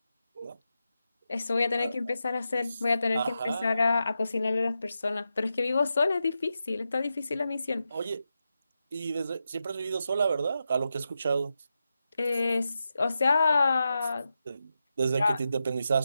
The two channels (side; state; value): both; inverted; correlation -0.88